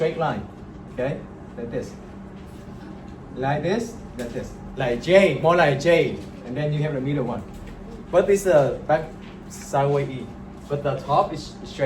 line. Okay? Like this. Like this, like this. Like J, more like J. And then you have the middle one. But this back sideways E. But the top is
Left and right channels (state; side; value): identical; both; correlation 1.00